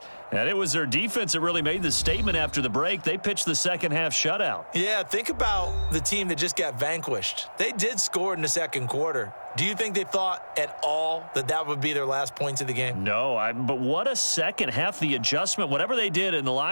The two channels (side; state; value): both; inverted; correlation -1.00